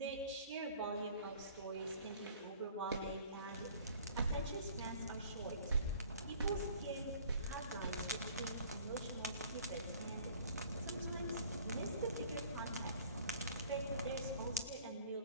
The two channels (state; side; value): inverted; both; correlation -0.52